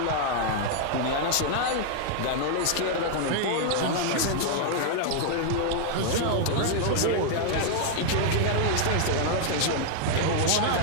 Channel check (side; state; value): both; different; correlation 0.00